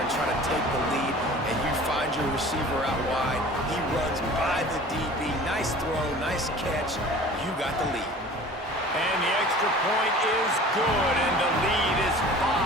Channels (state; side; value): normal; both; correlation 0.43